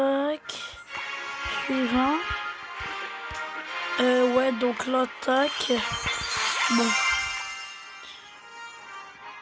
Suivant. Ouais, donc là, tac. Bon.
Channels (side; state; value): both; identical; correlation 1.00